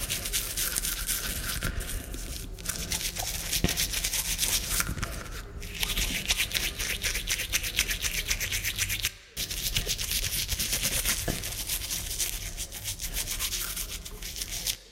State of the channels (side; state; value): both; identical; correlation 1.00